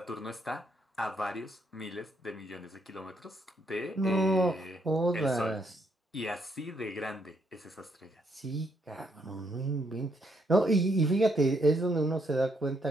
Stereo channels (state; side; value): normal; both; correlation 0.74